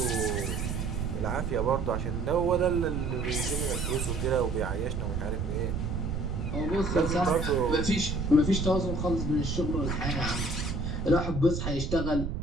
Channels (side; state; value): right; noise; rumble, 2 dB below the sound